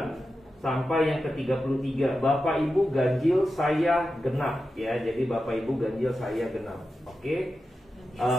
sampai yang ke-33. Bapak Ibu ganjil saya genap ya. Jadi Bapak Ibu ganjil saya genap. Oke.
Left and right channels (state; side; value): normal; both; correlation 0.91